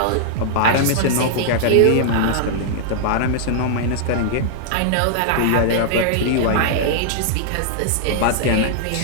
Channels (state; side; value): different; both; correlation -0.01